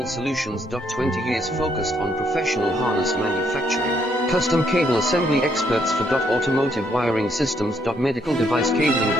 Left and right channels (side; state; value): both; normal; correlation 0.72